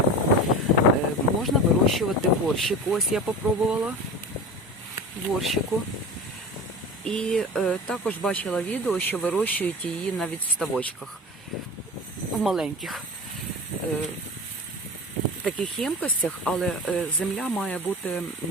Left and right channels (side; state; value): both; normal; correlation 0.32